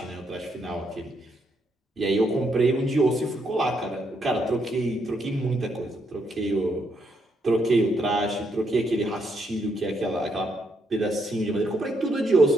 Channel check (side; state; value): both; normal; correlation 0.76